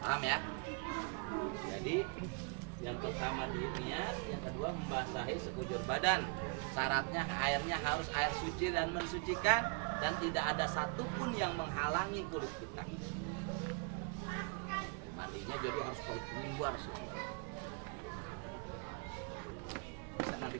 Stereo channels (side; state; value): left; quieter; 35.2 dB